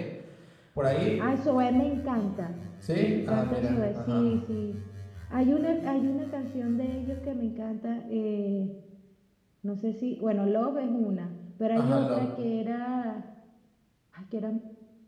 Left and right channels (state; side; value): identical; both; correlation 1.00